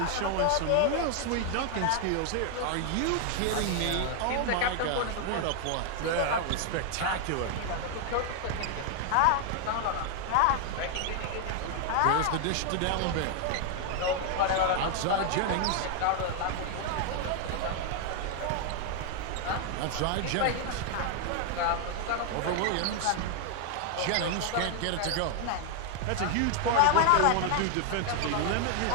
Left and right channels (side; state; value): both; different; correlation 0.00